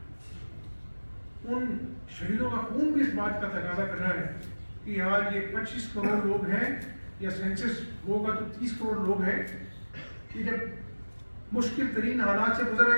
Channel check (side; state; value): both; inverted; correlation -1.00